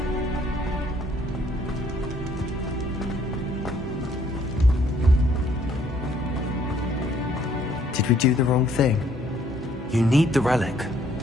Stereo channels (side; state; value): both; normal; correlation 0.64